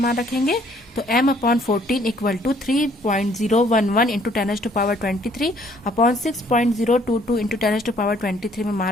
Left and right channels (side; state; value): both; normal; correlation 0.62